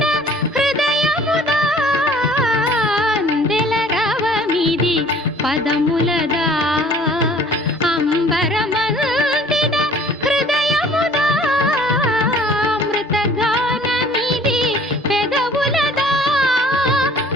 హృదయముదా అందెల రవమిది పదములదా అంబరమల్తిన హృదయముదా అమృతగానమిది పెదవులదా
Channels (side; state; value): both; normal; correlation 0.52